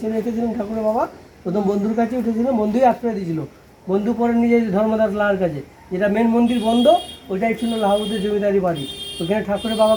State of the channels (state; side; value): identical; both; correlation 1.00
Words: ছেড়ে এসেছিলেন ঠাকুরের বাবা, প্রথম বন্ধুর কাছে উঠেছিলেন, বন্ধুই আশ্রয় দিয়েছিল। বন্ধু পরে নিজে ধর্মদাস লাহার কাছে, যেটা মেন মন্দির বন্ধ, ওইটাই ছিল লাহাবুদের জমিদারি বাড়ি। ওখানে ঠাকুরের